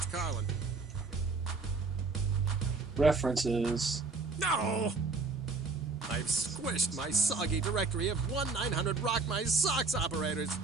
Carlin. References. No! I've squished my soggy directory of 1-900 Rock My Socks operators. Is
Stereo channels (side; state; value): left; quieter; 4.1 dB